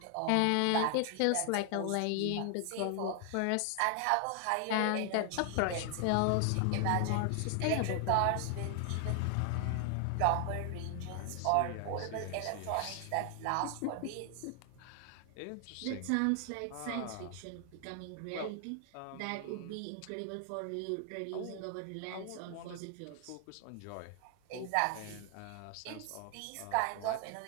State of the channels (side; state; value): both; different; correlation 0.00